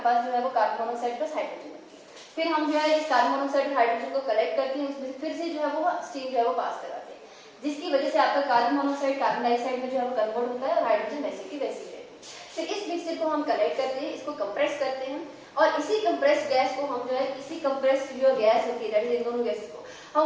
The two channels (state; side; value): identical; both; correlation 1.00